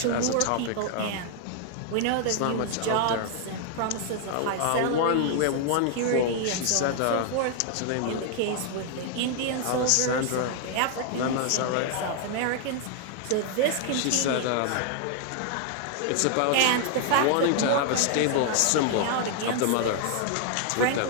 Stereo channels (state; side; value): different; both; correlation 0.00